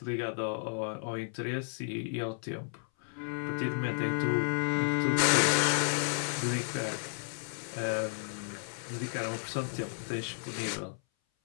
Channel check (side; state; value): right; silent; 56 dB below the other